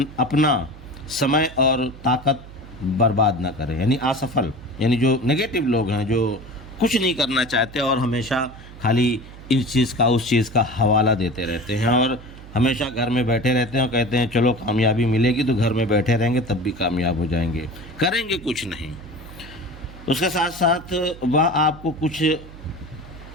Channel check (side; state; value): right; noise; hum, 17 dB below the sound